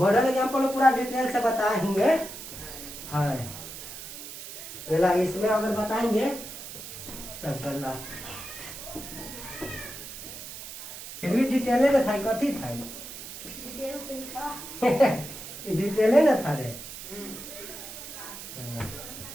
एग्जाम्पल पूरा डिटेल से बताएंगे। हाँ इसमें अगर बताएंगे तब चलना, फिर भी डिटेले न था, कथी था डिटेले न था रे।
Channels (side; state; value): right; noise; hiss, 11 dB below the sound